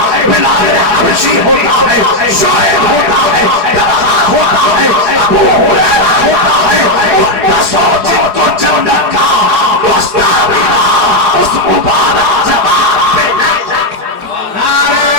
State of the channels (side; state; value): left; late; 4.8 ms